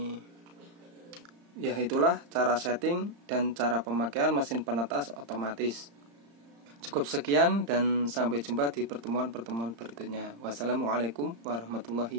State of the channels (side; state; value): left; late; 35 ms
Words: Ya, itulah cara setting dan cara pemakaian mesin penetas otomatis. Cukup sekian dan sampai jumpa di pertemuan-pertemuan berikutnya. Wassalamualaikum